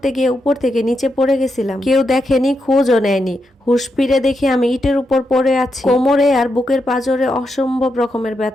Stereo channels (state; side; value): normal; both; correlation 0.84